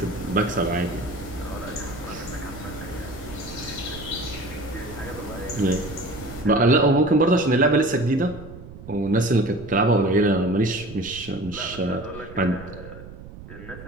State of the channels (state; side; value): noise; right; rumble, 15 dB below the sound